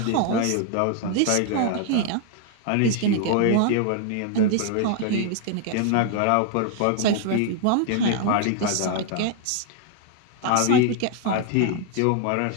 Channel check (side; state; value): both; different; correlation 0.00